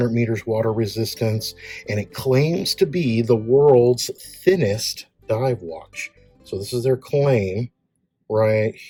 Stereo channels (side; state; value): both; identical; correlation 1.00